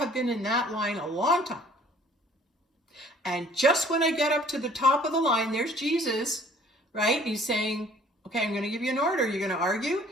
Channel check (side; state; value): both; normal; correlation 0.54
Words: been in that line a long time. And just when I get up to the top of the line, there's Jesus, right? He's saying, okay, I'm going to give you an order. You're going to argue.